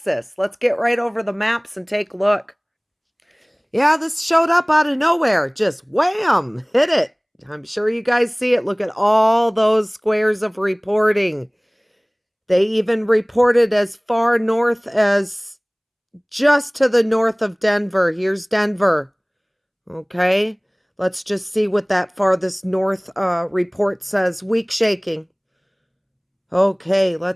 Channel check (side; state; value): both; identical; correlation 1.00